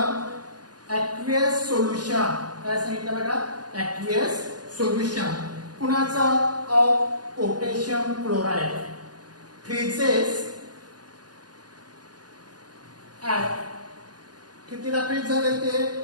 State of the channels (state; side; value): late; left; 0.69 ms